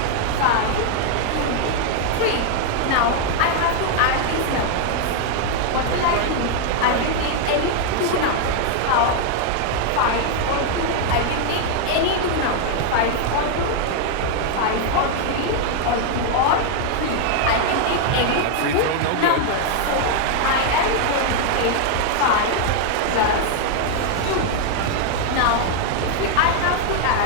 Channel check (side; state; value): both; different; correlation 0.00